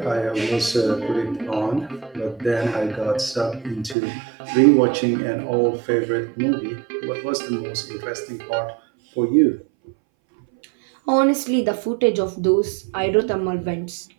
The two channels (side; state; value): left; drops out; at 4.0 s